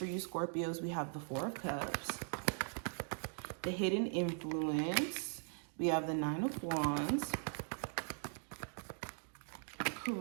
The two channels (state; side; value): silent; left; 51 dB below the other